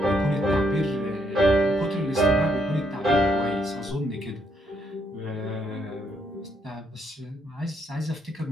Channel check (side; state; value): both; normal; correlation 0.74